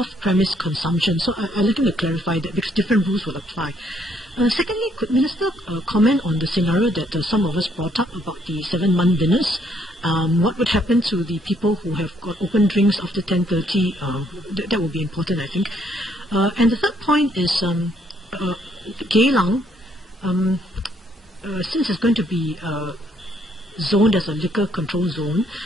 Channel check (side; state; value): both; normal; correlation 0.69